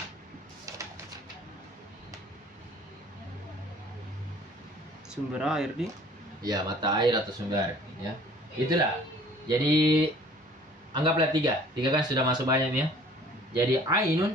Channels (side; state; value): both; normal; correlation 0.52